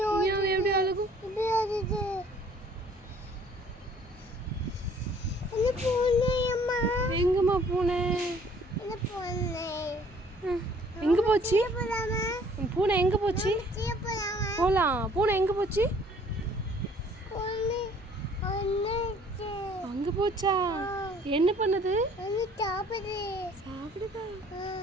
மியாவ் எப்படி அழுகும்? எங்கம்மா பூனை? எங்க போச்சு பூனை? எங்க போச்சு? போலாம். பூனை எங்க போச்சு? அங்க போச்சா? என்ன பண்ணுது? சாப்பிடுதா?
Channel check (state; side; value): normal; both; correlation 0.57